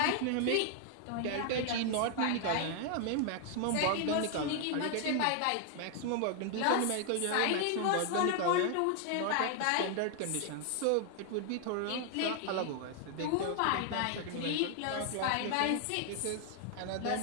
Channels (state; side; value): different; both; correlation 0.00